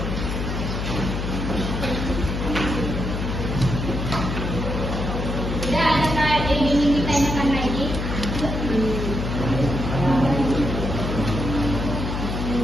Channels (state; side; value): noise; left; hum, 3 dB below the sound